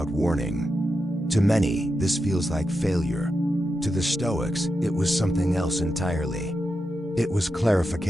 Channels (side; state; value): both; normal; correlation 0.88